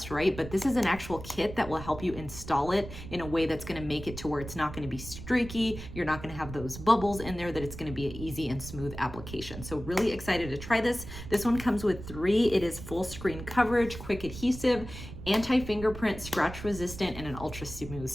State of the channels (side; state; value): right; noise; rumble, 11 dB below the sound